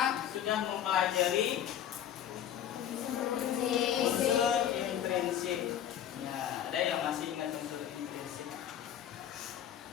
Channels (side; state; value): right; quieter; 10.2 dB